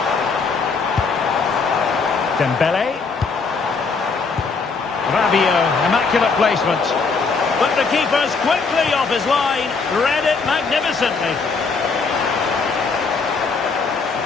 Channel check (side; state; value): right; quieter; 4.7 dB